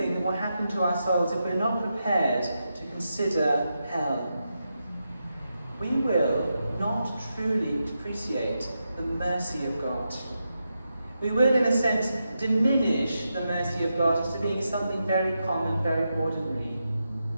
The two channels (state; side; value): inverted; both; correlation -0.87